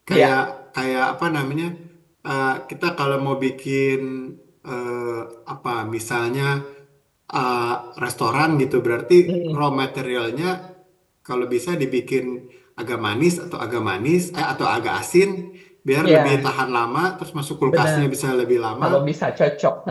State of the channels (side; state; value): both; identical; correlation 1.00